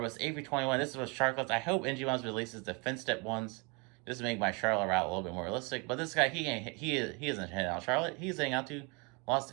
A321. This is with Charlotte. I hope NG Ones releases the fin step ones just to make my Charlotte route a little bit more realistic. But this guy, he isn't heading out Charlotte. He's heading out to Los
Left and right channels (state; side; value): quieter; left; 30.2 dB